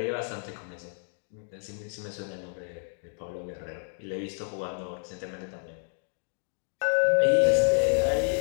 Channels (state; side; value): silent; right; digital silence